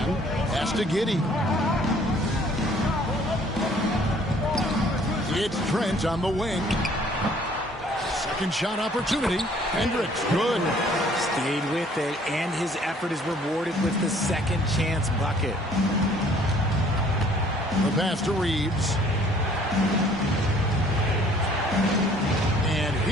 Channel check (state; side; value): normal; both; correlation 0.58